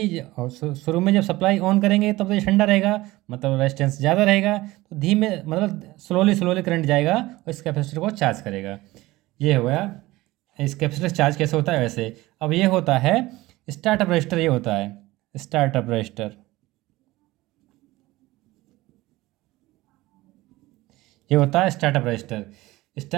शुरू में जब सप्लाई ऑन करेंगे तब तो ये ठंडा रहेगा, मतलब रेजिस्टेंस ज़्यादा रहेगा, तो धीमे मतलब स्लोली स्लोली करंट जाएगा और इस कैपेसिटर को चार्ज करेगा। ये हो गया इस कैपेसिटर चार्ज कैसे होता है वैसे। अब ये होता है स्टार्टअप रजिस्टर, ये होता है स्टार्टअप रजिस्टर। ये होता है स्टार्टअप रजिस्टर।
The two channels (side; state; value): left; quieter; 18.8 dB